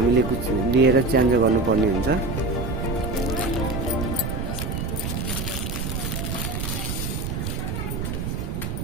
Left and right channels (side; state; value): right; noise; rumble, 3 dB below the sound